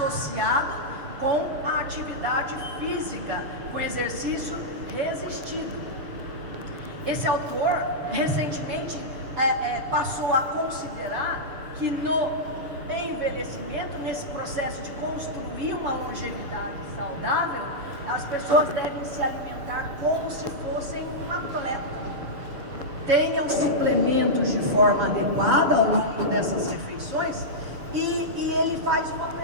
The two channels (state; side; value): late; left; 7.0 ms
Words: com a atividade física, com exercício resistido. Esse autor recentemente passou a considerar que no envelhecimento, nesse processo de construir uma longevidade saudável, as pessoas devem se alimentar como se fossem um atleta. Tenham suplementos de forma adequada ao longo dessas refeições. E ele faz uma